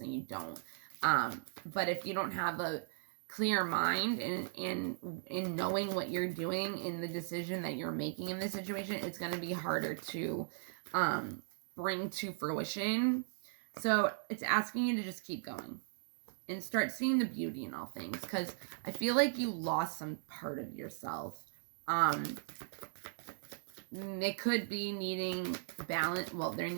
you don't, but if you don't have clear mind and in knowing what you're doing in the decision that you're making in this situation, it's going to be harder to bring to fruition. So it's asking you to just keep going and start seeing the beauty in all things, because I feel like you lost some part of yourself. It could be needing balance. Well, there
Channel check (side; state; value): left; silent; 53 dB below the other